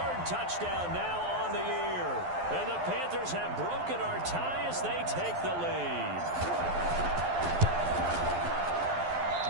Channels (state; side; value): late; left; 11 ms